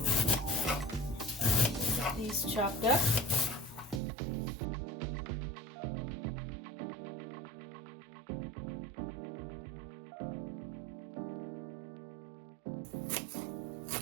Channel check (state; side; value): drops out; left; at 4.0 s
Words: These chopped up.